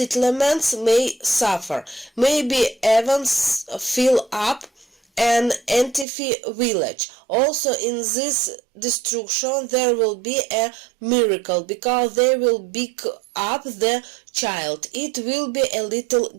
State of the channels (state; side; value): drops out; left; at 6.1 s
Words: may suffer, maybe even fill up an Antifi village. Also in this destruction there will be a miracle because they will pick up the child. It will be a